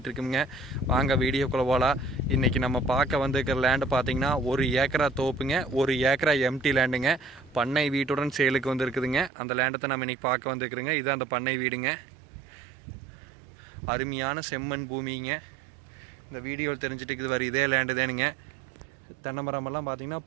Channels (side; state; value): left; drops out; at 9.3 s